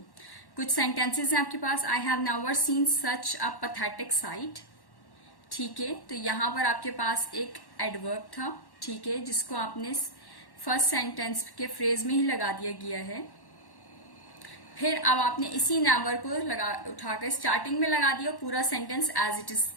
कुछ sentences हैं आपके पास, I have never seen such a pathetic sight. ठीक है, तो यहां पर आपके पास एक एडवर्ब था. ठीक है, जिसको आपने फर्स्ट सेंटेंस के फ्रेज में ही लगा दिया गया है. फिर अब आपने इसी नेवर को उठाकर स्टार्टिंग में लगा दिया, पूरा सेंटेंस एज इट इज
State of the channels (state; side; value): late; right; 1.1 ms